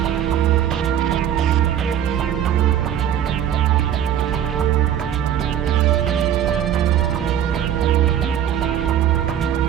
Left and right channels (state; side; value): quieter; left; 10.0 dB